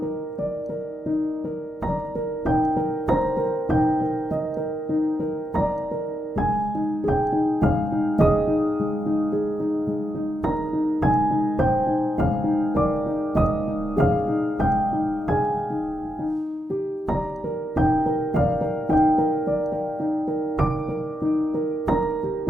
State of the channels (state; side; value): normal; both; correlation 0.85